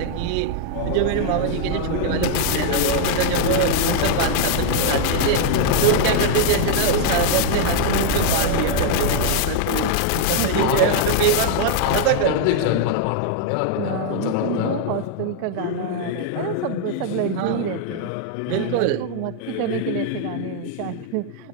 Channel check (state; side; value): different; both; correlation 0.00